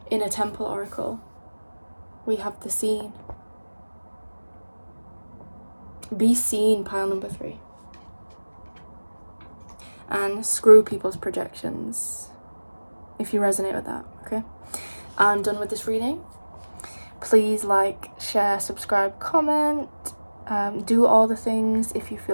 Inner Temple Oracle. We have the Scene. Be seen, pile number 3. And screw people's projections, if you resonate with that, okay? I'm done with this reading. Please like, share, subscribe, comment, do all the things if you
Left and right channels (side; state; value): both; inverted; correlation -1.00